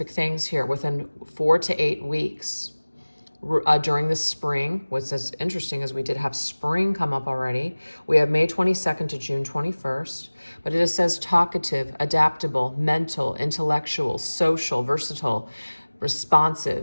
things here within 4 to 8 weeks. During the spring, what's as interesting is we did have spring come up already. We have May 22nd to June 21st, but it says talkative, adaptable, mental, intellectual, social, versatile,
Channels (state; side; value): inverted; both; correlation -1.00